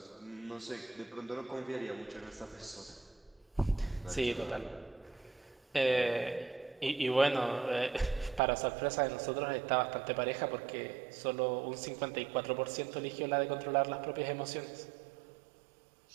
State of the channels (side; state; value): left; drops out; at 8.4 s